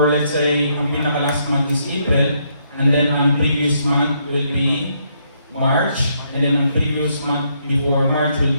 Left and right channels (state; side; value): inverted; both; correlation -0.74